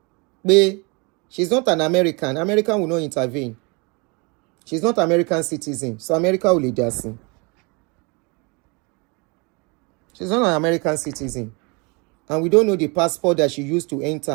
But she's not an American. American will not intervene. She's not American citizen. So America will lead us. She's not an American citizen. And we don't know the passport that she used to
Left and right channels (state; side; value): quieter; left; 29.8 dB